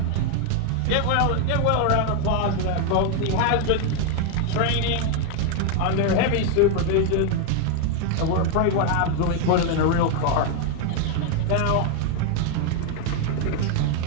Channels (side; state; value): both; different; correlation 0.01